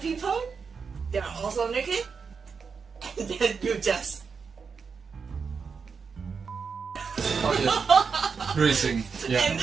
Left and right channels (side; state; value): left; quieter; 5.6 dB